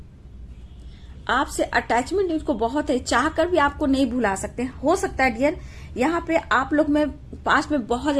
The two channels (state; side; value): identical; both; correlation 1.00